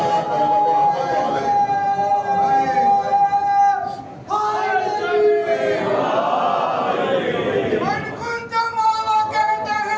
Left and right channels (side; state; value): both; identical; correlation 1.00